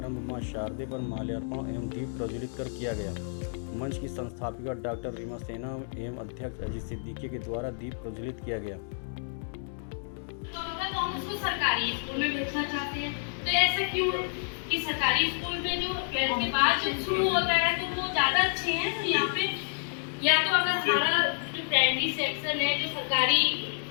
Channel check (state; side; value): silent; right; digital silence